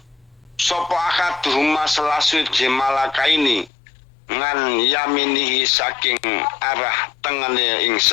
sapa akaduhuma salah suci malakaini ngan yaminihi saking arah tengene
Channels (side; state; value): right; drops out; at 3.7 s